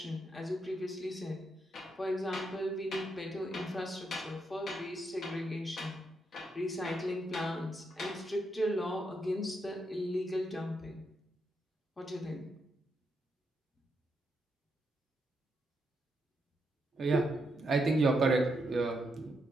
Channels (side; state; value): both; normal; correlation 0.81